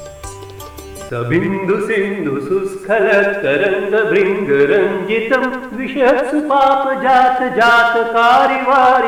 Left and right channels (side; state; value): both; identical; correlation 1.00